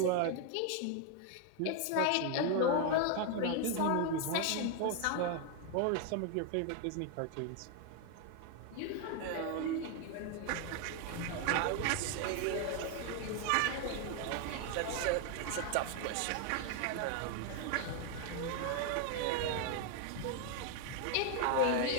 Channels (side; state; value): both; different; correlation 0.01